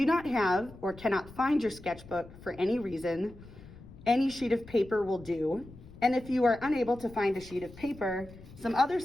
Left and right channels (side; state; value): left; noise; rumble, 19 dB below the sound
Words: not have or cannot find your sketchbook for any reason, any sheet of paper will do. And if you are unable to find a sheet of paper, some other